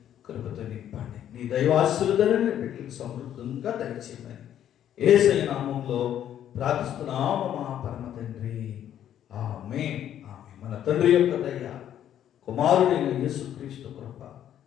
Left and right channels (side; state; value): right; quieter; 10.6 dB